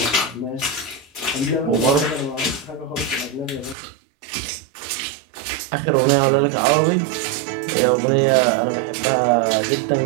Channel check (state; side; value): drops out; left; at 3.8 s